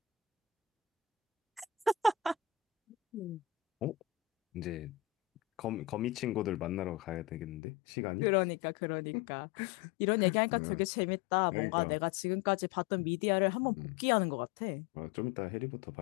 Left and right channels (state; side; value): drops out; right; at 7.6 s